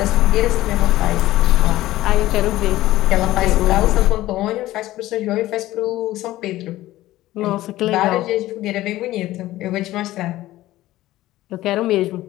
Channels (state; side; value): quieter; right; 16.0 dB